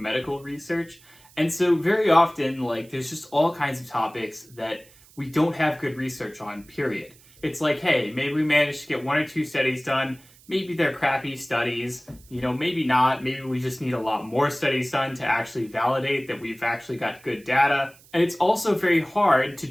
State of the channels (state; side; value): noise; right; hiss, 26 dB below the sound